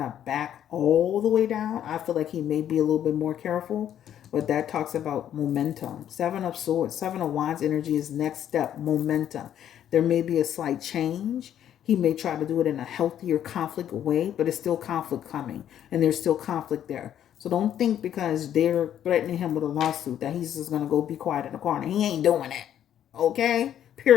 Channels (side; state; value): right; quieter; 10.4 dB